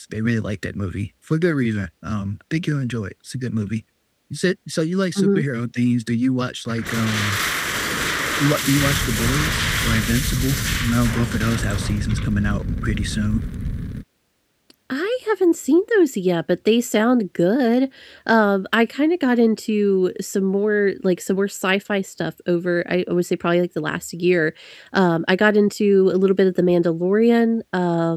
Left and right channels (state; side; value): identical; both; correlation 1.00